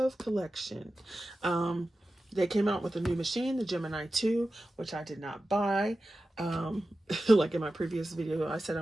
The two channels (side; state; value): both; normal; correlation 0.93